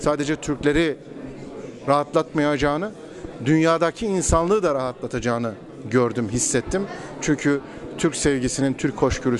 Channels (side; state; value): both; identical; correlation 1.00